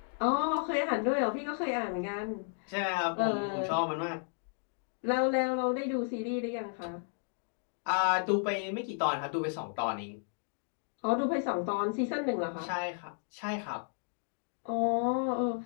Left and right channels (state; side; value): silent; right; 56 dB below the other